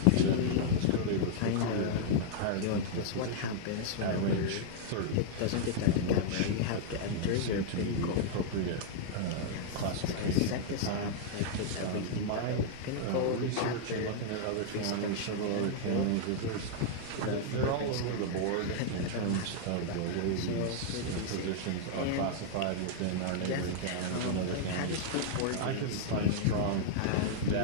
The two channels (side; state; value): both; different; correlation -0.01